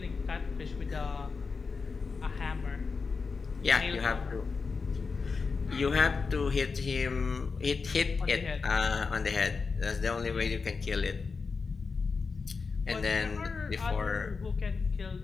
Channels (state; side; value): quieter; right; 4.8 dB